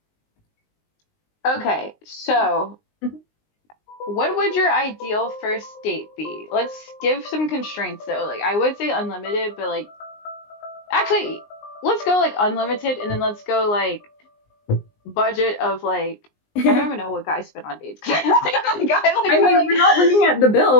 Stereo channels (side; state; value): right; late; 19 ms